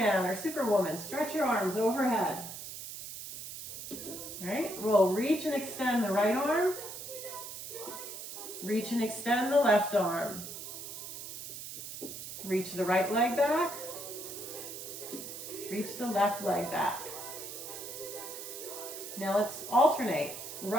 or Superwoman. Stretch your arms overhead. All right, we'll reach and extend the right arm. Reach and extend the left arm. Reach the right leg back. Reach the left leg back. Now let's alternate.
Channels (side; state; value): right; noise; hiss, 9 dB below the sound